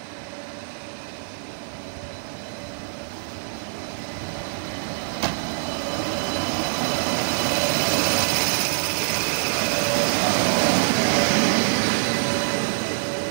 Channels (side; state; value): left; silent; digital silence